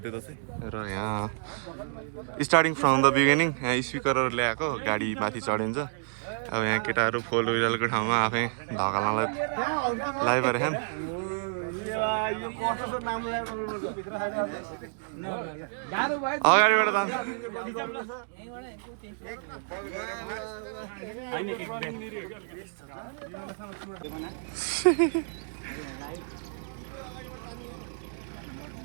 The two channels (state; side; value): silent; left; digital silence